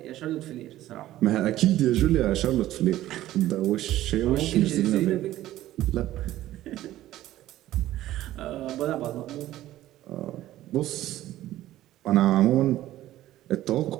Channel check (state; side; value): quieter; left; 14.4 dB